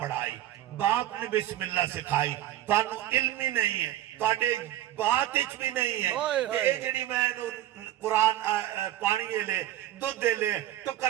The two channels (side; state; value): left; quieter; 13.1 dB